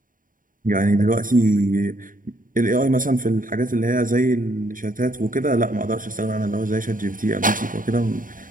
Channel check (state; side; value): late; left; 0.39 ms